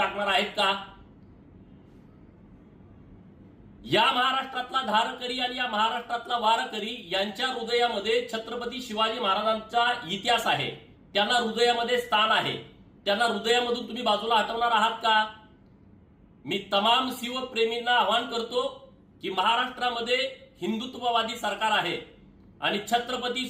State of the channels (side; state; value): both; identical; correlation 1.00